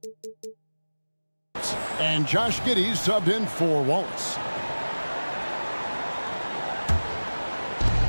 And Josh Giddey's subbed in for Wallace.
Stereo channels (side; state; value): both; inverted; correlation -1.00